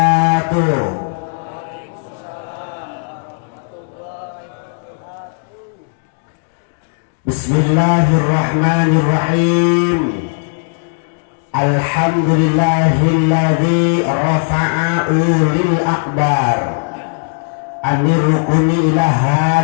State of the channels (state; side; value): silent; right; digital silence